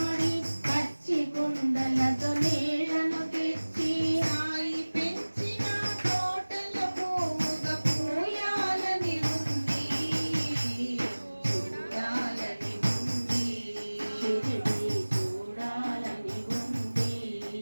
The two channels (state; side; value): inverted; both; correlation -1.00